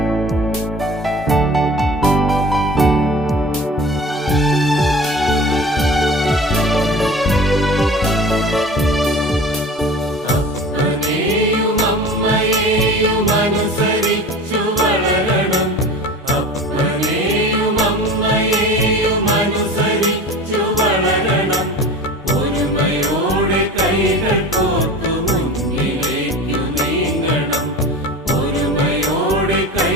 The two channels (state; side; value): normal; both; correlation 0.38